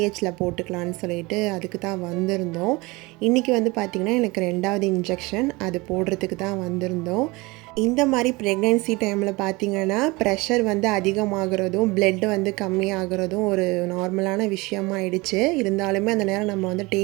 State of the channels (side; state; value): left; quieter; 23.7 dB